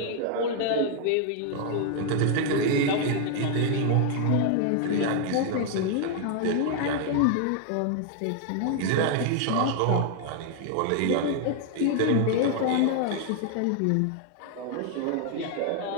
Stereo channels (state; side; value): different; both; correlation 0.00